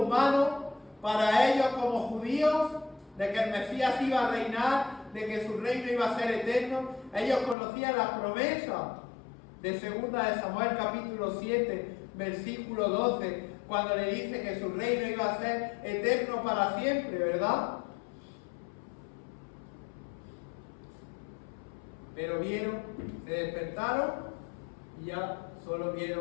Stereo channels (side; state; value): right; drops out; at 7.6 s